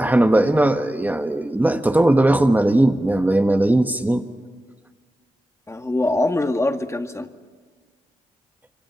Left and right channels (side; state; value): both; normal; correlation 0.93